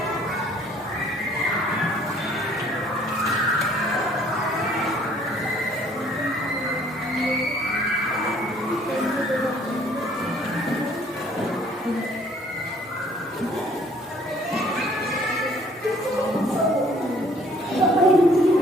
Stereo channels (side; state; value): both; normal; correlation 0.59